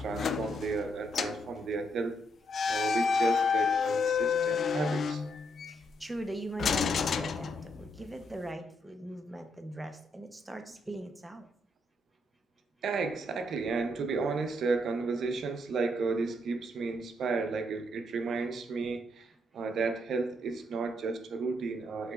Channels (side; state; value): both; normal; correlation 0.75